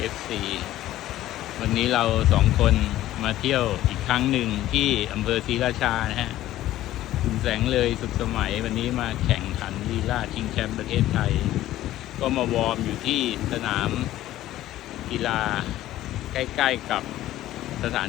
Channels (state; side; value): quieter; right; 14.3 dB